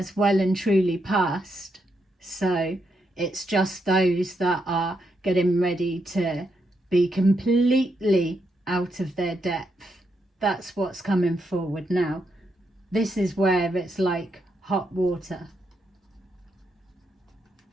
well and truly passed, so it's just those that are getting ready to be completely out of their depth. That's what's coming forward now. This is where it's like hot water.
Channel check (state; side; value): normal; both; correlation 0.80